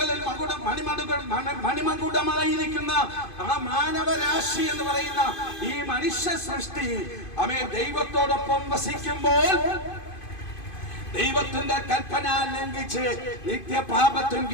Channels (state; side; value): late; right; 2.5 ms